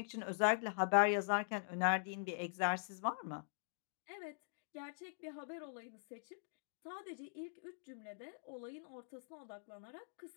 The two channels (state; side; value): silent; right; digital silence